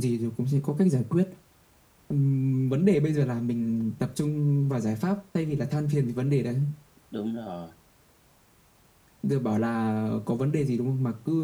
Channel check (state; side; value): identical; both; correlation 1.00